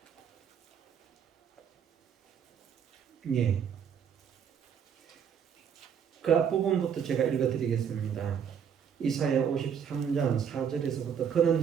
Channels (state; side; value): quieter; left; 7.8 dB